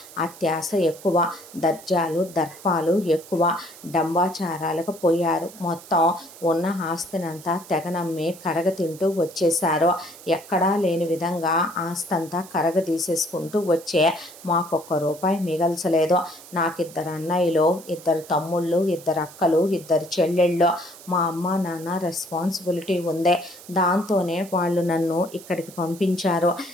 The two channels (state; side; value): noise; right; hiss, 19 dB below the sound